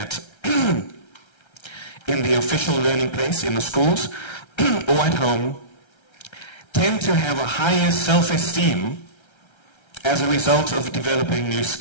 in the official learning place, in the schools or at home, tend to have a higher self-esteem as a result of developing new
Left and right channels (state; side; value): late; right; 1.3 ms